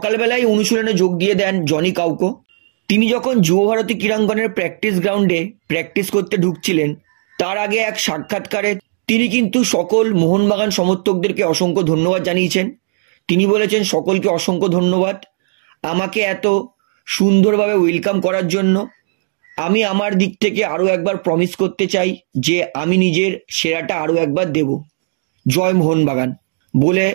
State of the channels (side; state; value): left; silent; digital silence